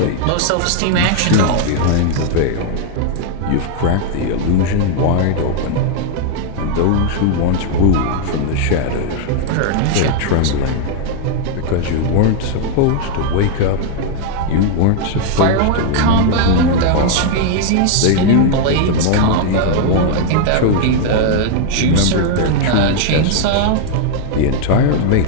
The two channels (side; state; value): both; different; correlation 0.00